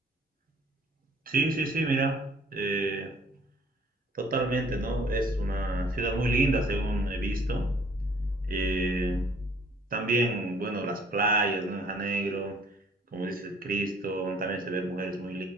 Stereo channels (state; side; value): normal; both; correlation 0.57